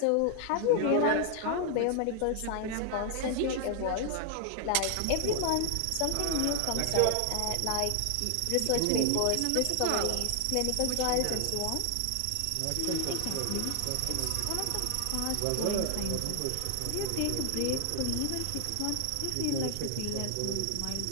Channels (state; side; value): different; both; correlation 0.00